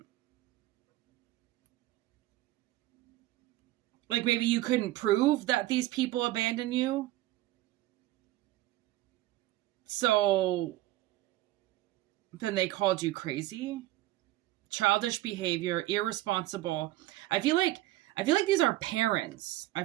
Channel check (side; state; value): left; quieter; 16.5 dB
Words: maybe you couldn't prove that these people abandoned you. So then they called you crazy. Childish behavior, irresponsible. I feel like these are parents. I